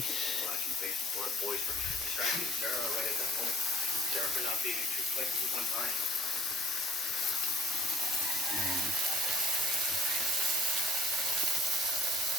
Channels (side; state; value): both; normal; correlation 0.54